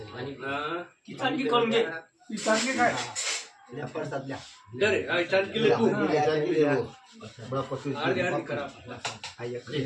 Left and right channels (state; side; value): identical; both; correlation 1.00